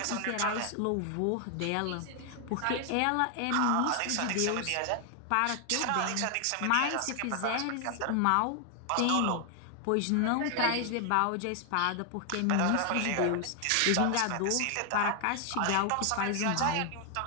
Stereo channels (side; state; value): both; different; correlation 0.00